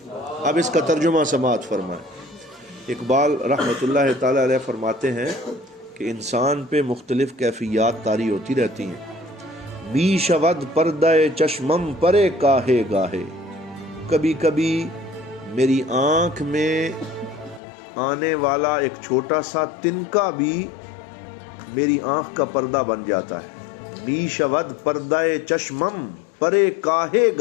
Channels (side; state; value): right; drops out; at 17.6 s